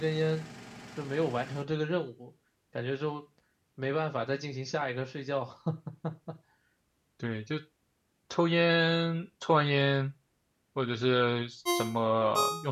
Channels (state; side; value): identical; both; correlation 1.00